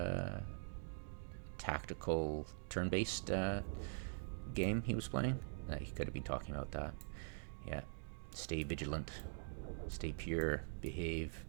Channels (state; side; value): silent; left; digital silence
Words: tactical turn-based game he was playing. He could have been talking about that. Yeah. Stay vigilant. Stay pure. Behave.